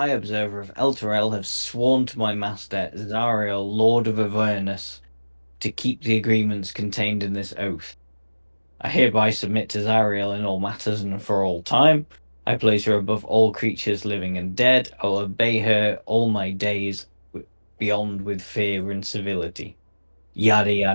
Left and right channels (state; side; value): inverted; both; correlation -1.00